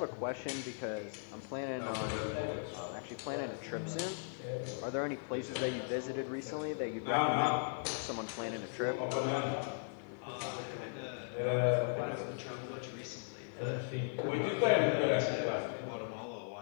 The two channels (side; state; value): right; silent; 53 dB below the other